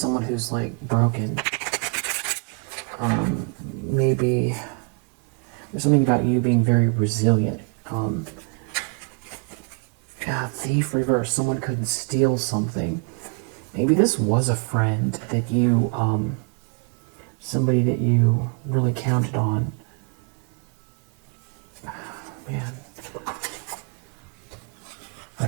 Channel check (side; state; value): left; quieter; 34.0 dB